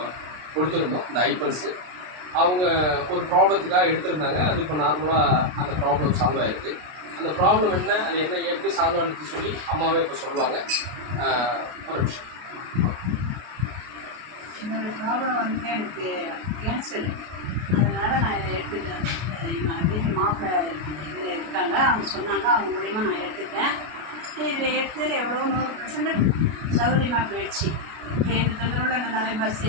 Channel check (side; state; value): left; late; 33 ms